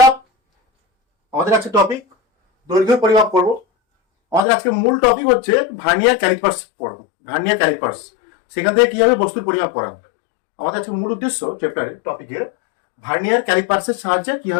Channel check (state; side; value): drops out; right; at 4.4 s